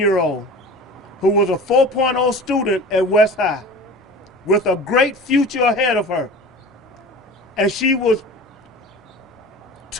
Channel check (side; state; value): both; normal; correlation 0.37